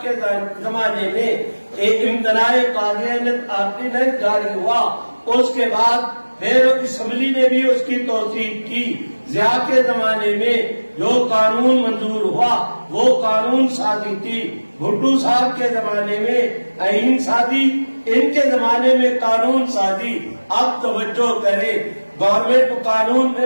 کے زمانے میں ایک امتناع قاضیانت آرڈیننس جاری ہوا، اس کے بعد پھر اسمبلی نے بھی اس کی توثیق کی۔ ضیاء کے زمانے میں جو قانون منظور ہوا وہ قانون سازی تھی، بھٹو صاحب کے زمانے میں آئین سازی، ان کے زمانے میں قانون سازی۔ اب توجہ کرے، گورنمنٹ قانون میں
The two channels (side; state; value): both; inverted; correlation -1.00